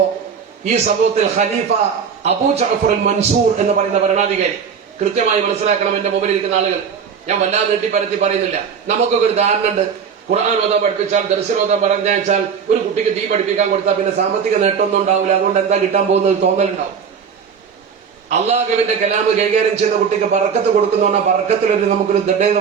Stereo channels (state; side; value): quieter; left; 6.7 dB